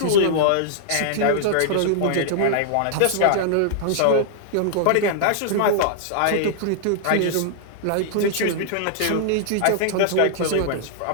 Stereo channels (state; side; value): different; both; correlation -0.01